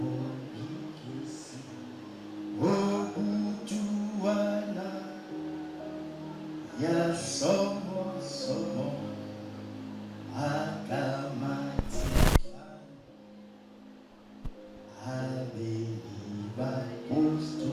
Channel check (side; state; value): both; identical; correlation 1.00